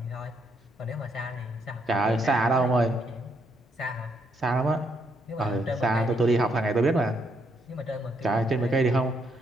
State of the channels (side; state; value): both; normal; correlation 0.75